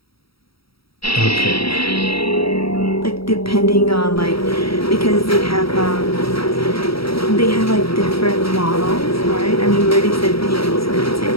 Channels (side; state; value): right; late; 0.75 ms